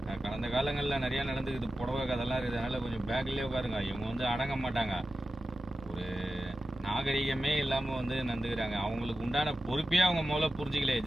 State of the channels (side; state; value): both; normal; correlation 0.92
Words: கடந்த காலங்களில் நிறைய நடந்துக்குது. புடவை கதெல்லாம் இருக்குது. அதனால கொஞ்சம் பேக்லேயே உட்காருங்க. இவங்க வந்து அடங்க மாட்டாங்க. ஒரு நாகரிகமே இல்லாமல் வந்து நடந்துக்கிறாங்க. அவங்களுக்கு உண்டான பொறுப்பே அவங்க முதல்ல புரிஞ்சிக்கல.